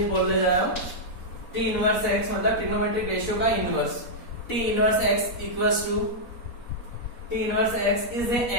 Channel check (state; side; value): late; right; 4.0 ms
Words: बोलने जा रहा हूं। टी इनवर्स एक्स मतलब ट्रिग्नोमेट्रिक रेशियो का inverse. T inverse x equals to, T inverse x is an